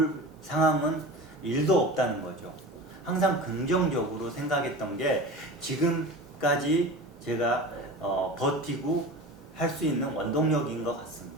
상황은 1도 없다는 거죠. 항상 긍정적으로 생각했던 게 지금까지 제가 버티고 할 수 있는 원동력인 것 같습니다.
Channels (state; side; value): normal; both; correlation 0.32